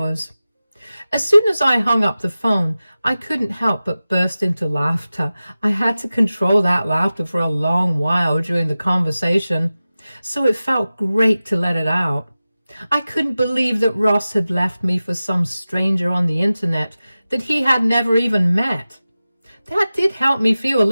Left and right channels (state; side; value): inverted; both; correlation -0.96